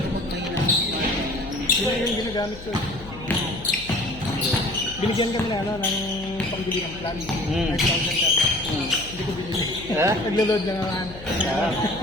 Kapag mahina ang smart. Yun na yung ginagamit ko. Binigyan kami na ano, ng pangbili ng plan. 5,000 per month. Hindi ko binili. Ha? Naglo-load lang naman. Ah.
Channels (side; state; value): left; noise; hum, 15 dB below the sound